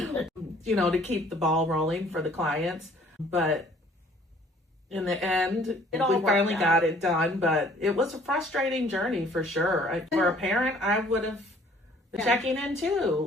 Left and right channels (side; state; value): both; normal; correlation 0.57